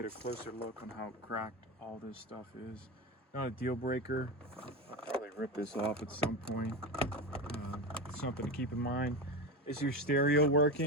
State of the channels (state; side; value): normal; both; correlation 0.21